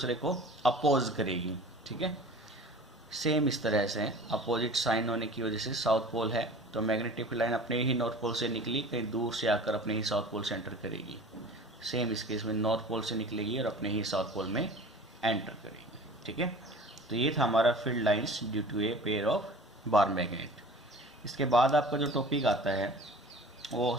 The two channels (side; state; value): both; normal; correlation 0.41